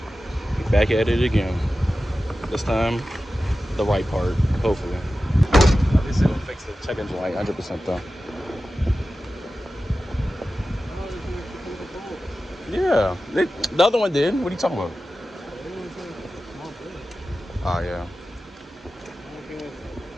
Back at it again. This time, the right part, hopefully. Obviously, we'll fix the check engine light 100% though. Yeah, the other one did. What are you talking about? Oh, yeah.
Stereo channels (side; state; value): both; normal; correlation 0.94